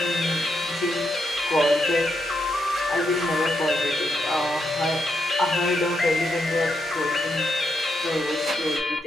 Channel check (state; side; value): normal; both; correlation 0.81